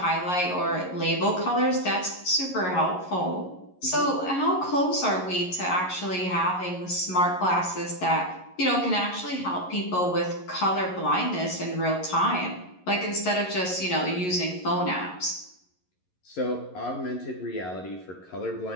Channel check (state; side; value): late; right; 11 ms